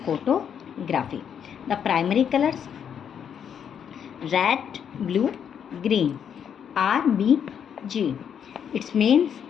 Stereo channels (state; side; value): quieter; right; 8.2 dB